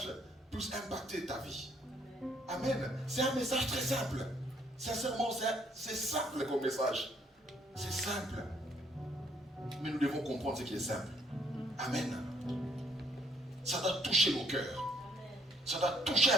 puisse impacter ta vie. Amen. C'est un message très simple. Sincèrement, c'est simple comme message. C'est simple. Mais nous devons comprendre ce qui est simple. Amen. Ça doit toucher nos cœurs. Ça doit toucher,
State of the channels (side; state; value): both; normal; correlation 0.66